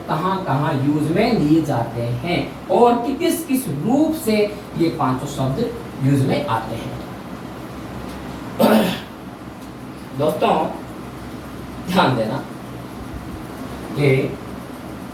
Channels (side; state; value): both; identical; correlation 1.00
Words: कहाँ कहाँ यूज में लिए जाते हैं और कि किस किस रूप से ये 5 शब्द यूज में आते हैं। दोस्तों ध्यान देना, ये